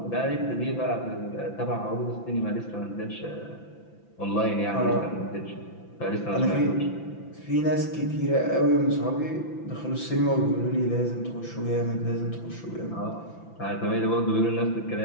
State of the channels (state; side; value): late; right; 5.9 ms